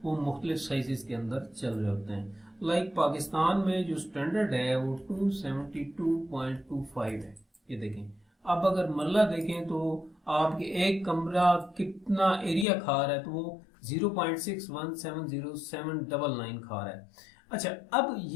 वो मुख्तलिफ साइजेस के अंदर चल रहे होते हैं। लाइक पाकिस्तान में जो स्टैंडर्ड है वो 272.25 है। ये देखें, अब अगर मरला देखें तो आपके एक कमरा कितना एरिया खा रहा है तो वो 0.617079 खा रहा है। अच्छा, अब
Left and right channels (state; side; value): drops out; right; at 12.7 s